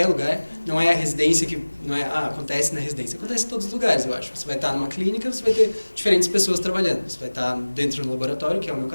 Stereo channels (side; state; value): both; inverted; correlation -1.00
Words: lugar. Não é a residência que... Não é, acontece na residência. Acontece em todos os lugares, eu acho. Você vai estar numa clínica, você vai ter diferentes pessoas trabalhando. Você vai estar dentro do laboratório, que é o meu